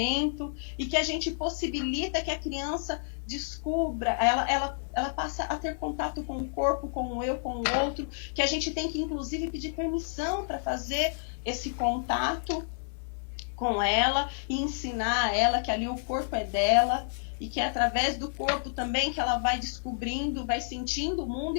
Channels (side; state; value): right; silent; digital silence